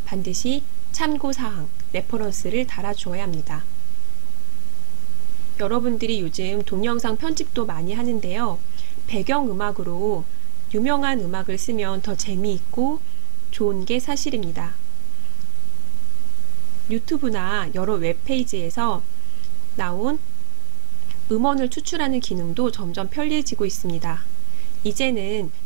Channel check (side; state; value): left; silent; digital silence